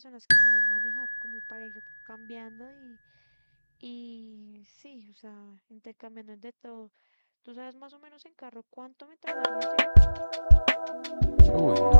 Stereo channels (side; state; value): both; inverted; correlation -1.00